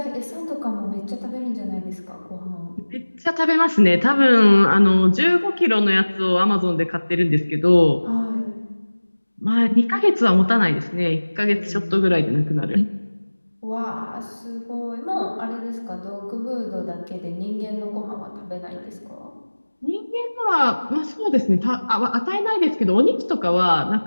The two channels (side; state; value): both; inverted; correlation -1.00